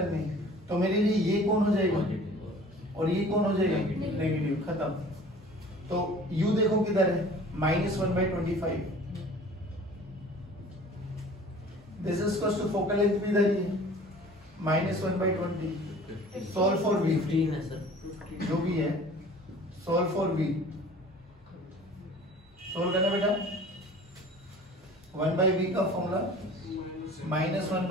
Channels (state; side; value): normal; both; correlation 0.46